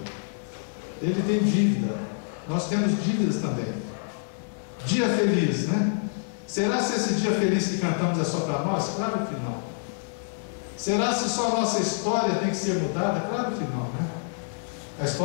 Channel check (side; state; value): right; silent; digital silence